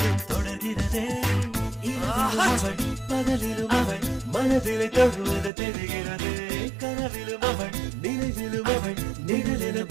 தொடர்கிறதே அவள் பகலிலும் அவள் மனதிலே தொழுவது தெரிகிறது கனவிலும் அவள் நினைவிலும் அவள் நிழலென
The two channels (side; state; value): left; drops out; at 5.5 s